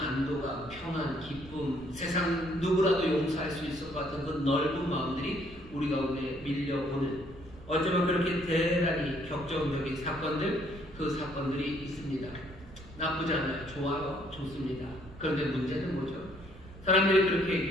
평안, 기쁨, 세상 누구라도 용서할 수 있을 것 같은 그 넓은 마음들이 우리 가운데 밀려오는 어쩌면 그렇게 대단히 격정적인 사건들, 그 사건들이 있습니다. 나쁘지 않아요. 좋아요. 좋습니다. 그런데 문제는 뭐죠? 사람들이 그렇게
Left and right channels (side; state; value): right; noise; rumble, 18 dB below the sound